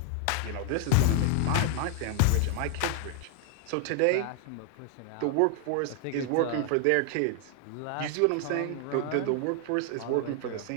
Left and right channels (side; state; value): both; different; correlation 0.00